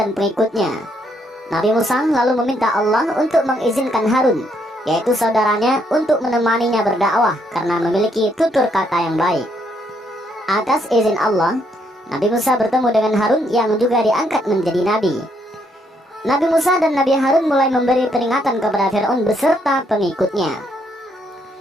pengikutnya. Nabi Musa lalu meminta Allah untuk mengizinkan Harun, yaitu saudaranya, untuk menemaninya berdakwah karena memiliki tutur kata yang baik. Atas izin Allah, Nabi Musa bertemu dengan Harun yang juga diangkat menjadi nabi. Nabi Musa dan Nabi Harun mulai memberi peringatan kepada Fir'aun beserta pengikutnya.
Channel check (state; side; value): normal; both; correlation 0.73